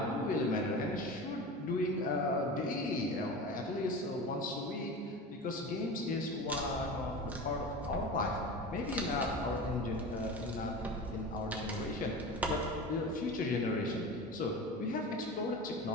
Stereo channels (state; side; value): normal; both; correlation 0.30